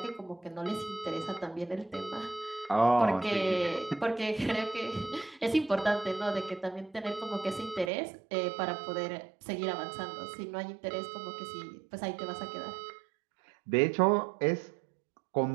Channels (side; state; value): left; drops out; at 7.9 s